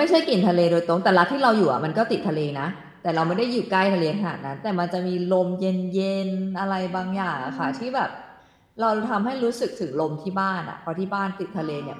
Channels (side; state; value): both; identical; correlation 1.00